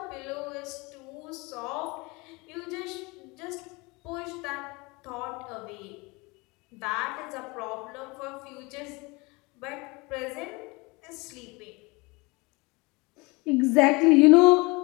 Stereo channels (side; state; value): right; quieter; 25.7 dB